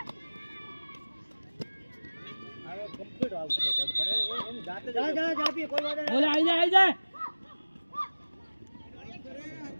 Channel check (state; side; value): inverted; both; correlation -1.00